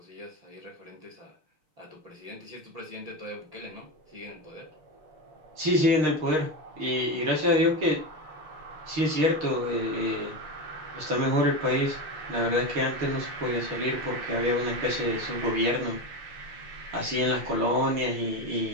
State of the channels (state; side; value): late; left; 6.5 ms